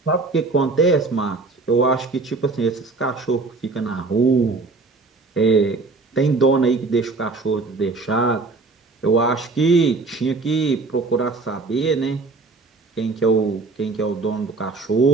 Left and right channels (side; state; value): left; quieter; 3.8 dB